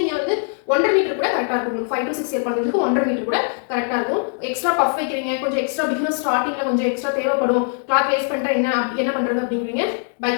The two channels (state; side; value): silent; right; 56 dB below the other